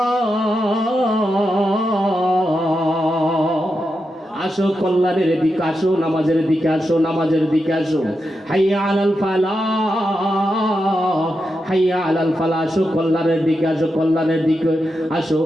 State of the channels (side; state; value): both; normal; correlation 0.87